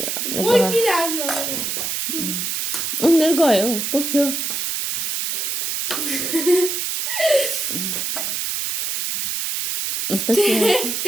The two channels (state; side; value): noise; right; hiss, 1 dB below the sound